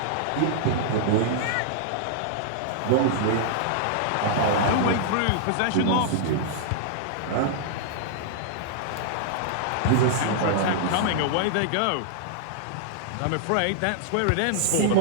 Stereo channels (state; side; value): different; both; correlation -0.01